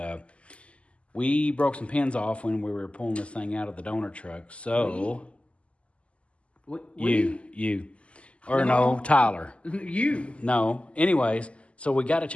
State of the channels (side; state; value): right; late; 0.058 ms